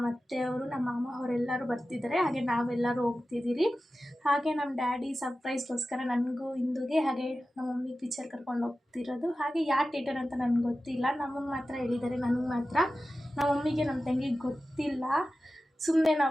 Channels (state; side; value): normal; both; correlation 0.94